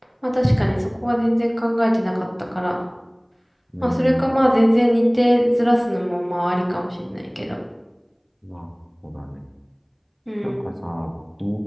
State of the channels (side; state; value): both; identical; correlation 1.00